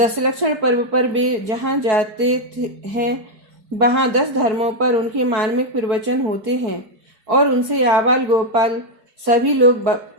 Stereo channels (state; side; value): late; left; 4.6 ms